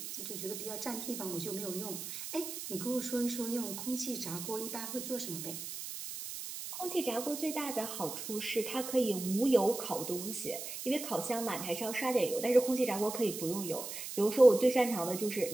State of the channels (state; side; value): noise; right; hiss, 7 dB below the sound